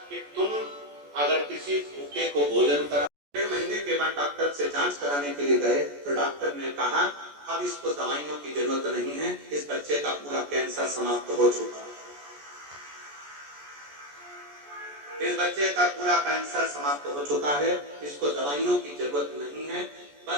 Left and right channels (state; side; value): late; left; 14 ms